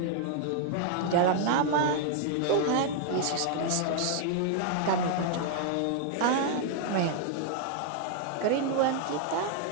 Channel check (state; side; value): different; both; correlation -0.01